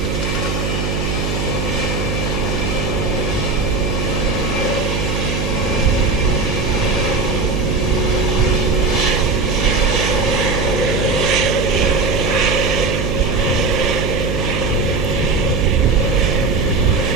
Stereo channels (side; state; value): right; noise; hum, 1 dB below the sound